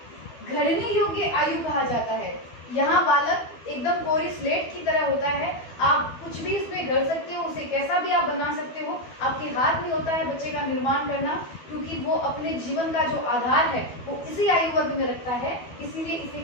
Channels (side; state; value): right; late; 12 ms